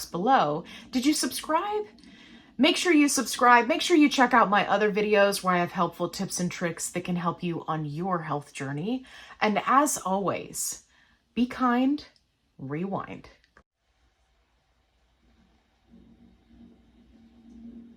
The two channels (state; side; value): identical; both; correlation 1.00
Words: below. Did you subscribe? Make sure you subscribe. Make sure you check out my other videos where I have helpful tips and tricks that can help you on your health journey. And as always, be kind, rewind.